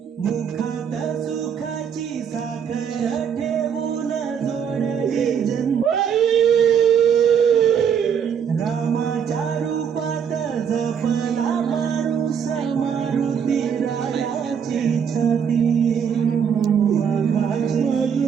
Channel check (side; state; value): left; quieter; 7.6 dB